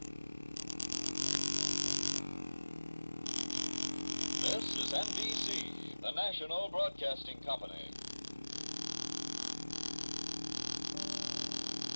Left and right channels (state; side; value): inverted; both; correlation -1.00